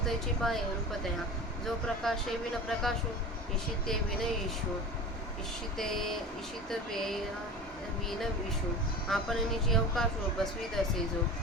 त्याची पाय रूपतया जो प्रकाशे विन प्रकाशू इशिते विन ईशू इशित विन विशू आपण निजी अवकाशू बसवीत असे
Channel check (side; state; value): both; normal; correlation 0.34